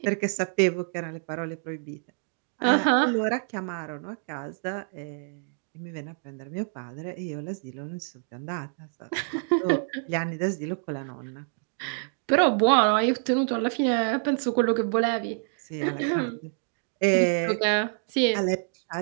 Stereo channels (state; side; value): silent; left; digital silence